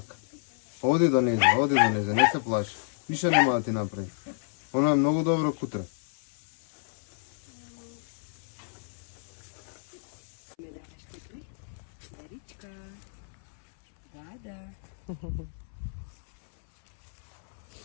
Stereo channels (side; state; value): right; silent; 58 dB below the other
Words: Оди до неза, не се плаши. Више нема да ти направи. Оно е много добро кутре. Даричка. Да.